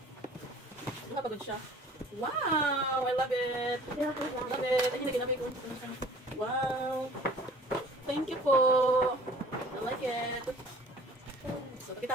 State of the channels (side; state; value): both; normal; correlation 0.49